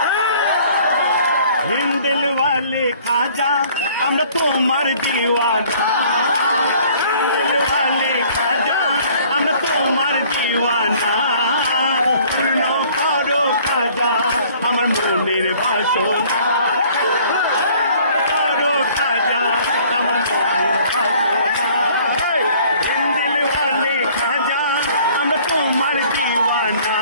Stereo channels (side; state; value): both; inverted; correlation -0.55